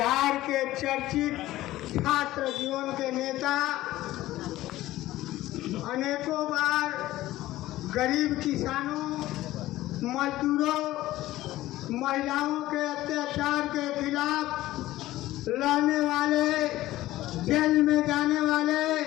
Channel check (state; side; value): quieter; right; 15.9 dB